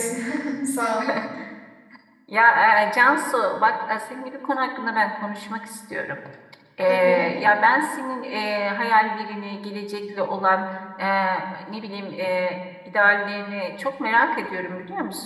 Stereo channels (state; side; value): identical; both; correlation 1.00